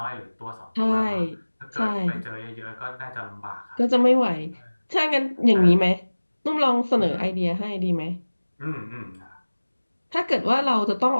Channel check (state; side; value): inverted; both; correlation -1.00